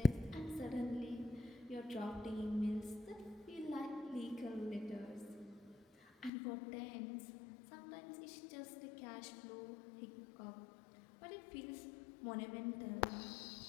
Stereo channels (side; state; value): right; drops out; at 6.3 s